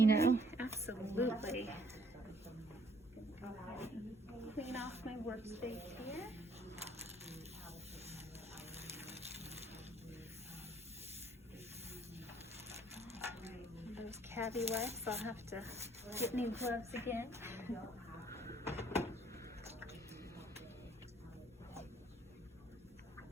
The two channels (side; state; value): both; normal; correlation 0.62